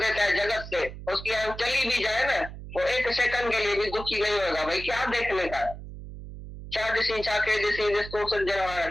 है जगत से, उसकी आंख चली भी जाए ना, वो एक सेकंड के लिए भी दुखी नहीं होगा। भाई क्या देखने का है,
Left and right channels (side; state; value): right; noise; hum, 12 dB below the sound